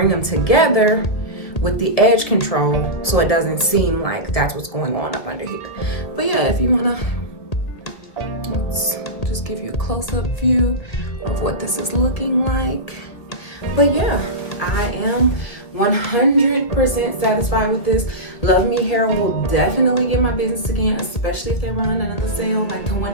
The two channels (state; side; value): late; right; 2.0 ms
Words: them together with the edge control so it doesn't seem like that's what's going on up under here. But yeah, if you wanna, let's just give you a close-up view of what this is looking like. But yeah, I am 100% satisfied with this. Love Me Hair will definitely get my business again, especially if they run another sale like the